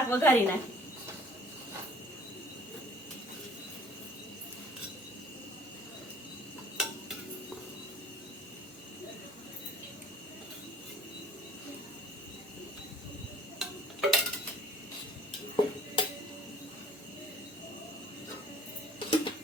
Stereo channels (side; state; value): both; normal; correlation 0.52